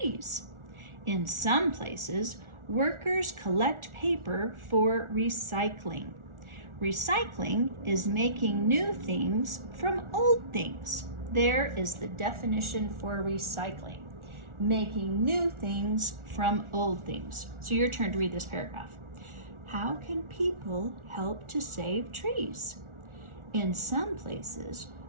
In some places, workers collect paper for recycling. Recycling is making new things from old things. There is the definition for recycling. Making new things from old things. So your turn to read this paragraph. How can people help to save trees? In some places,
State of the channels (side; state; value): left; late; 1.4 ms